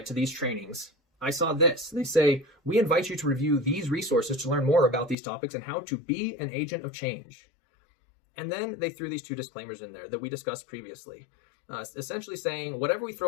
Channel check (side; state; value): right; drops out; at 5.2 s